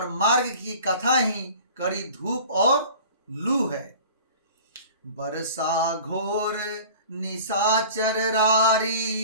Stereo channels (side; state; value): both; inverted; correlation -0.43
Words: मार्ग की कथा ही कड़ी धूप और लू है। बरसा घोर निशाचर